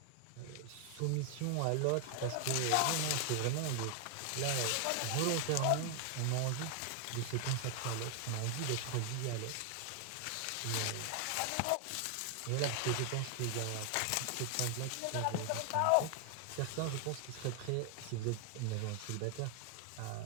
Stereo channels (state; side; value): different; both; correlation 0.00